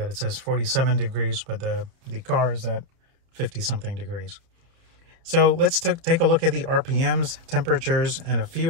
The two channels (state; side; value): late; left; 30 ms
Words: it says 47 degrees, but the car is at 50 something degrees. So let's take a look at the RPMs, temperatures, and a